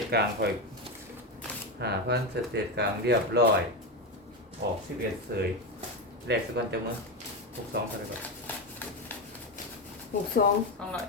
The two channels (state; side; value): normal; both; correlation 0.13